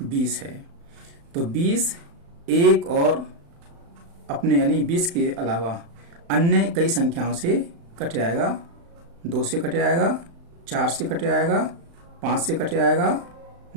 20 है तो 20 एक और अपने यानी 20 के अलावा अन्य कई संख्याओं से कट जाएगा। 2 से कट जाएगा, 4 से कट जाएगा, 5 से कट जाएगा,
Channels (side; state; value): left; late; 35 ms